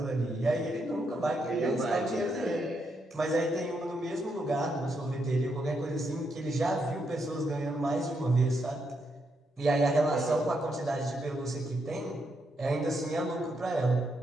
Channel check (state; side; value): normal; both; correlation 0.80